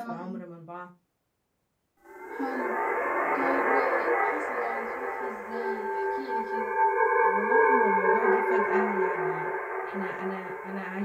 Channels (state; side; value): identical; both; correlation 1.00